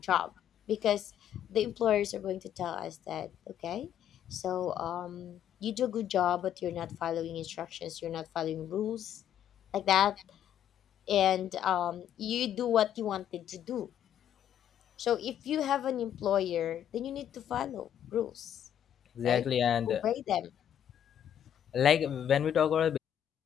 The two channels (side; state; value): right; quieter; 10.1 dB